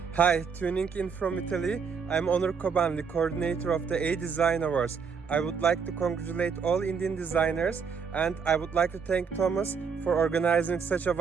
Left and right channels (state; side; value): quieter; left; 6.0 dB